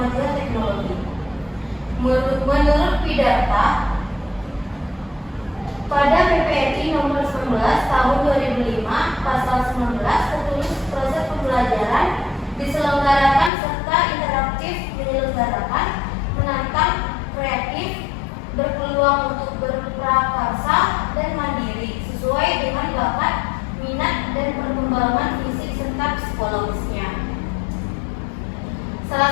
teknologi. Menurut Pidarta, pada PPRI nomor 19 tahun 2005 pasal 19 tertulis proses pembelajaran diselenggarakan serta interaktif menyelenggarakan, menantang, kreatif, berpeluang untuk berprakarsa dan mandiri sesuai dengan bakat, minat, dan perkembangan fisik serta psikologisnya. Salah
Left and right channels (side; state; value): right; drops out; at 13.5 s